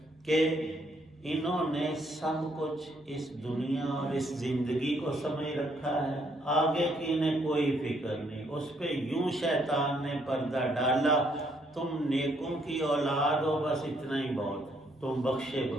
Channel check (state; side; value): normal; both; correlation 0.70